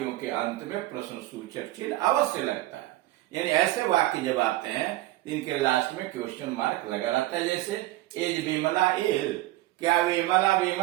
के अंत में प्रश्न सूचक चिन्ह अवश्य लगता है। यानी ऐसे वाक्य जब आते हैं इनके लास्ट में क्वेश्चन मार्क लगा रहता है। जैसे इज विमला इल, क्या विमला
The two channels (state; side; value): quieter; left; 17.0 dB